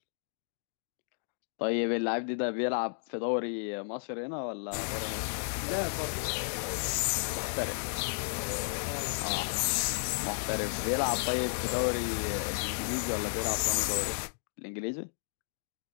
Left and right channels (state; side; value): silent; right; digital silence